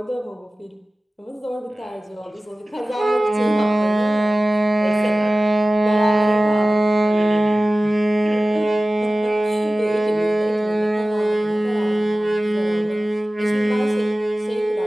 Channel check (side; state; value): both; normal; correlation 0.96